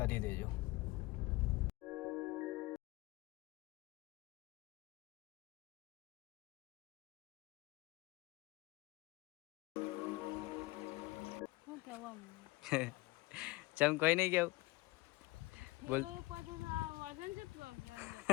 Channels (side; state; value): right; quieter; 21.1 dB